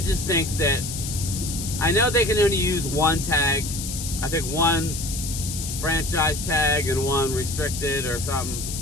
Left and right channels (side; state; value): left; noise; hiss, 6 dB below the sound